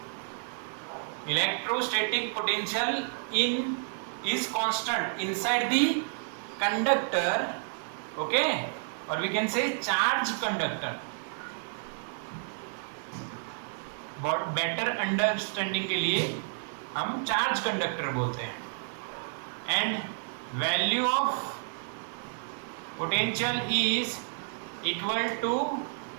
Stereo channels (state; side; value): silent; left; digital silence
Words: Electrostatic potential is constant inside the conductor, okay, or we can say charge conductor. बहुत बेटर अंडरस्टैंडिंग के लिए हम चार्ज कंडक्टर बोलते हैं। And value of potential is equal to